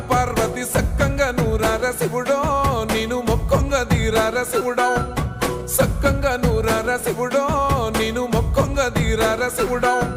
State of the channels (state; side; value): identical; both; correlation 1.00